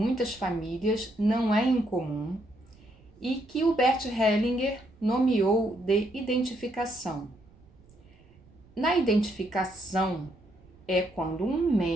famílias, não é incomum, e que o Bert Hellinger nomeou de identificação. Na identificação é quando um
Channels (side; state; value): right; noise; rumble, 27 dB below the sound